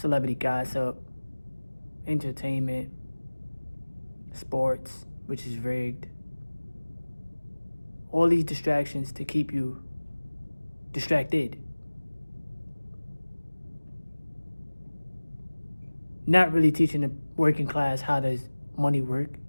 gossip, entertainment, sports, which is rigged. All these distractions to keep you distracted. Not really teaching the working class how does money work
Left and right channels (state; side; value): inverted; both; correlation -1.00